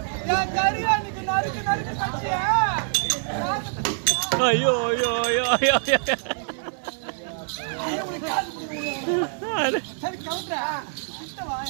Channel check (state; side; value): silent; left; digital silence